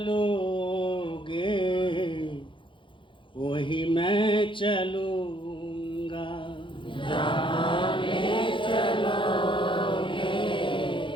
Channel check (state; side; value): late; right; 0.24 ms